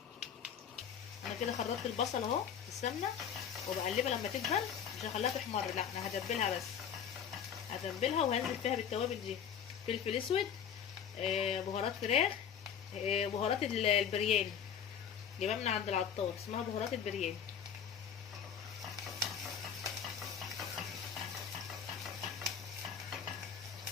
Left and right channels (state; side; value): quieter; right; 8.1 dB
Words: انا كده خرطت البصل اهو في السمنه وبقلبها لما تدبل، مش هخليها تحمر، لا انا هدبلها بس، هتبلها وهنزل فيها بالتوابل دي: فلفل اسود، بهارات فراخ، بهارات البرياني جايبها من عند العطار، اسمها بهارات البرياني.